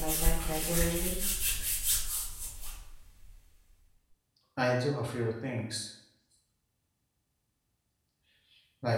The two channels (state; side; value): identical; both; correlation 1.00